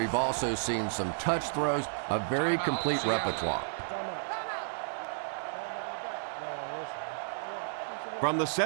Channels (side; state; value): left; silent; digital silence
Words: also seen some touch throws, a very complete repertoire. From the